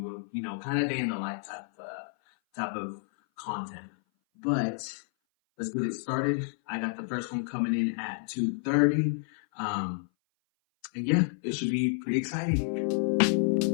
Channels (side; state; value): right; silent; 57 dB below the other